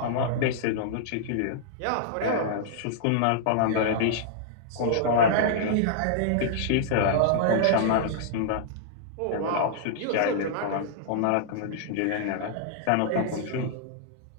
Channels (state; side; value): different; both; correlation -0.01